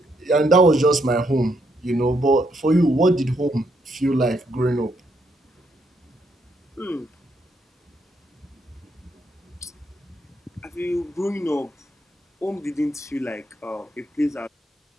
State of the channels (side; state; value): both; normal; correlation 0.75